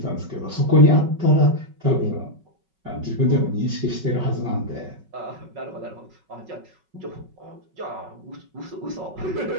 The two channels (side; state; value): left; late; 5.3 ms